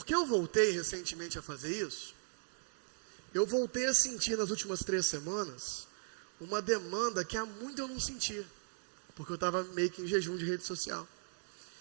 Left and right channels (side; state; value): left; silent; digital silence